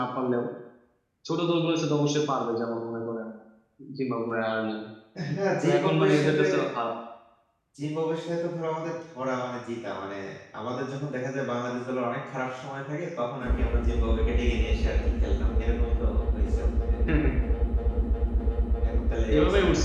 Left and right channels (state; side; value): identical; both; correlation 1.00